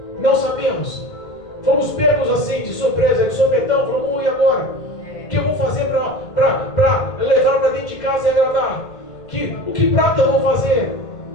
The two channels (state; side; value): late; right; 2.0 ms